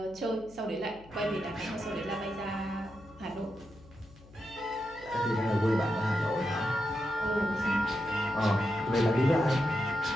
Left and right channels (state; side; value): noise; left; hum, 23 dB below the sound